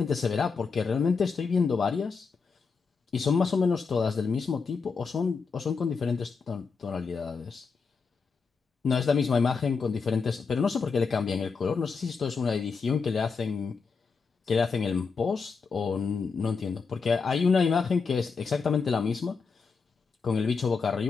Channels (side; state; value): right; quieter; 5.1 dB